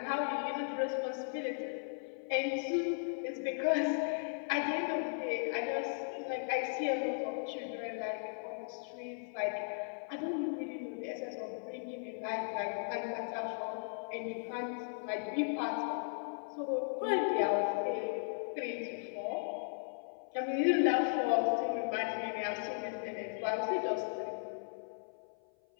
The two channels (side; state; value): right; silent; 53 dB below the other